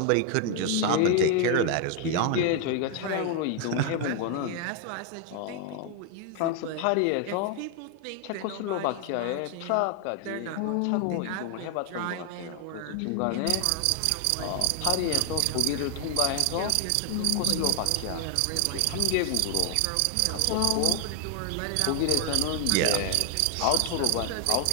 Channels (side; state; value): both; different; correlation 0.00